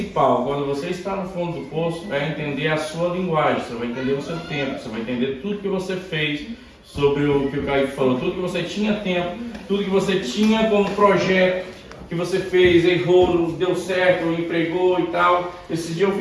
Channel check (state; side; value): identical; both; correlation 1.00